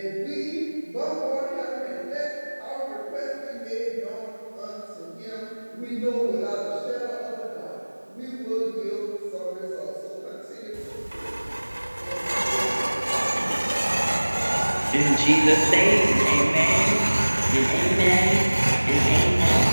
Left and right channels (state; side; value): inverted; both; correlation -1.00